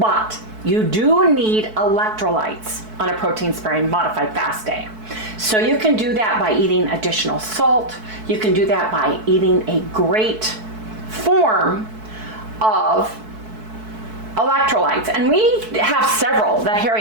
you do need electrolytes on a protein sparing modified fast day. So you can do that by eating additional salt. You can do that by eating a great form of electrolytes. And we have several that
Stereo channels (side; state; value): left; late; 4.6 ms